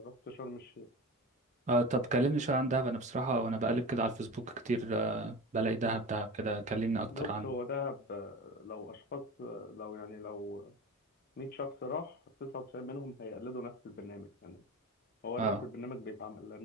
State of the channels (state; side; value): normal; both; correlation 0.31